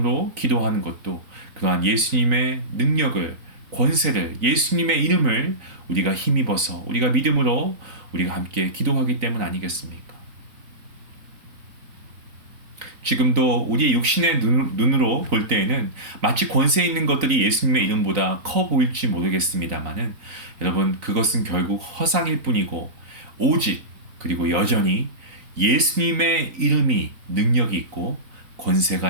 기도하는 것도 그러한 예수님의 능력을, 권세를, 예수님의 이름을 우리가 힘입어서 우리가 믿음으로 우리가 함께 기도하기 때문 아니겠습니까? 지금도 우리의 육신의 눈으로 볼 때에는 마치 권세 있는 것들이 예수님의 이름보다 커 보일지 모르겠습니다만은 여러분, 그것은 결국 허상일 뿐이고 오직 그리고 여전히 예수님의 이름이 능력이 있고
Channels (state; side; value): late; left; 3.9 ms